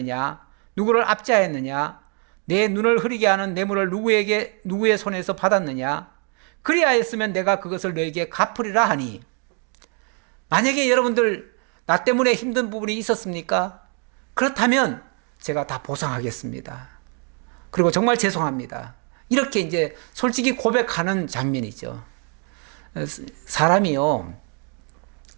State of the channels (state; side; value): quieter; left; 39.1 dB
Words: 누구를 압제하였느냐, 내 눈을 흐리게 하는 뇌물을 누구의 손에서 받았느냐, 그리하였으면 내가 그것을 너에게 갚으리라 하니. 만약에 여러분들 나 때문에 힘든 부분이 있었습니까? 그렇다면 제가 다 보상하겠습니다. 그리고 정말 죄송합니다. 이렇게 이제 솔직히 고백하는 장면이죠. 사람이요,